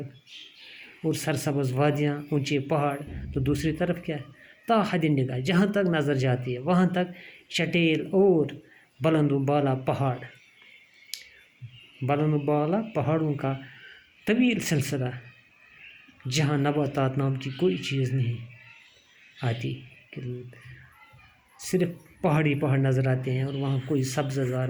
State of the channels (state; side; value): identical; both; correlation 1.00